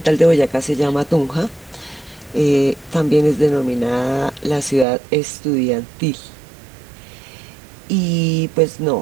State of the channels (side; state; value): left; drops out; at 4.9 s